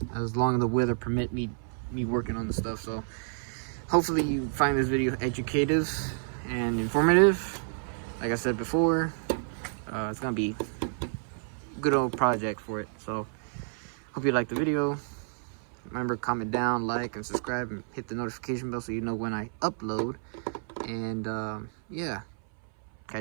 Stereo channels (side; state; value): left; silent; 58 dB below the other